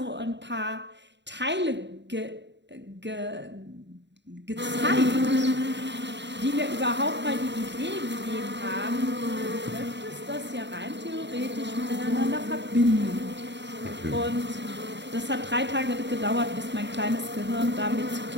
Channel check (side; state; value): left; late; 0.52 ms